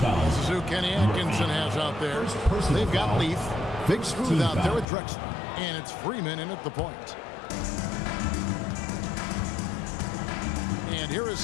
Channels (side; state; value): right; drops out; at 4.9 s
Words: is who Kenny Atkinson has out there. They've got Leaf, Big Smooth out there with Drexler, and it's Freeman in at the point. And here is